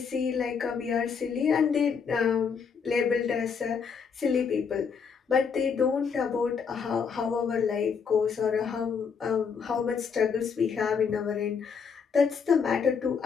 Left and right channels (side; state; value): right; quieter; 6.1 dB